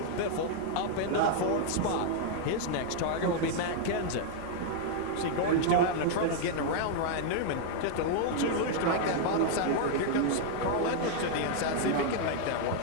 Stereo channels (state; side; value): different; both; correlation 0.00